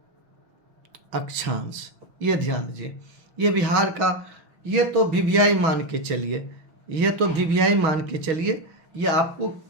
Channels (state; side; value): late; left; 6.2 ms